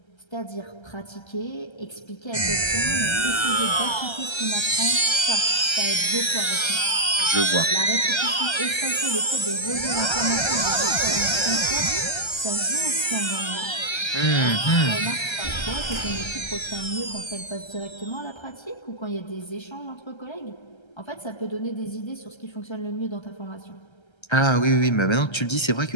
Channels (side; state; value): right; late; 1.3 ms